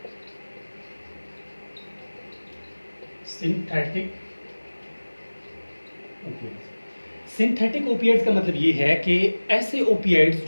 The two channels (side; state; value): both; inverted; correlation -1.00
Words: synthetic opioids. Synthetic opioids का मतलब ये है कि ऐसे ओपियाइड्स